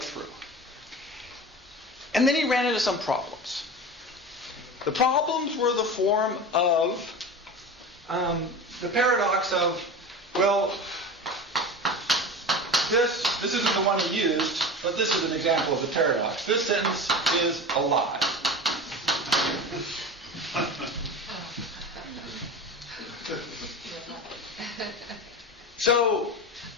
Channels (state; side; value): normal; both; correlation 0.30